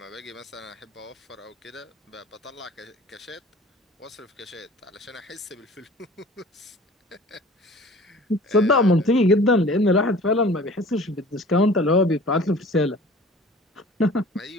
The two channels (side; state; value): both; normal; correlation 0.45